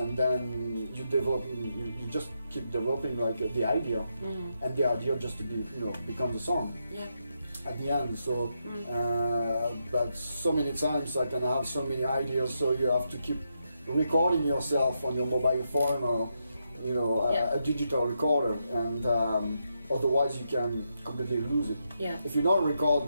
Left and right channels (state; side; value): inverted; both; correlation -0.82